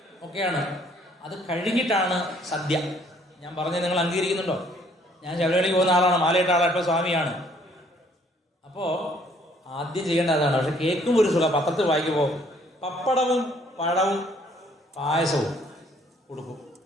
ഒക്കെയാണ്. അത് കഴിഞ്ഞിട്ടാണ് സദ്യ. ഞാൻ പറഞ്ഞത് നിങ്ങൾ അംഗീകരിക്കുന്നുണ്ടോ? ഞാൻ ശബരിമലയ്ക്ക് പോകുന്ന ആളാണ്, മാലയിട്ട ആളാണ്, ഇപ്പോൾ സ്വാമിയാണ്. അപ്പോൾ ആദ്യം ചെയ്യേണ്ട അതാണ്. പക്ഷെ കേൾക്കും ഒരു സുഖം. പത്രത്തിൽ വായിക്കുമ്പോൾ പപ്പടവും പഴവും പായസവും കൊടുക്കും.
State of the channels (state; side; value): normal; both; correlation 0.62